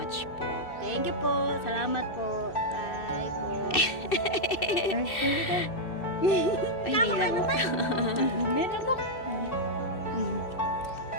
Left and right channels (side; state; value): right; late; 2.7 ms